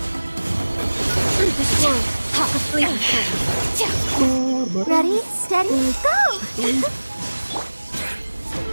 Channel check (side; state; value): both; inverted; correlation -1.00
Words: This world, asleep. Ready, steady, go!